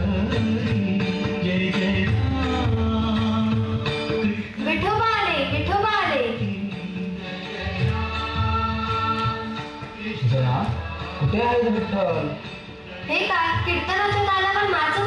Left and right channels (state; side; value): identical; both; correlation 1.00